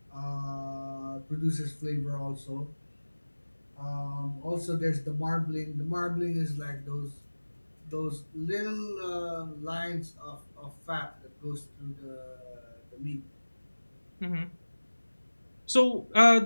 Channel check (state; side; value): inverted; both; correlation -1.00